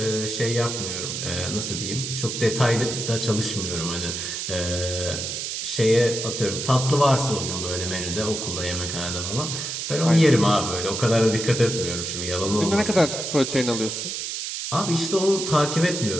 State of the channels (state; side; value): noise; right; hiss, 4 dB below the sound